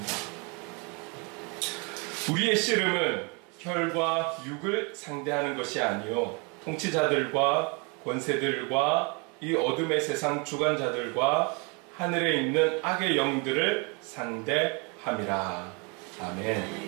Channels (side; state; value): left; quieter; 32.0 dB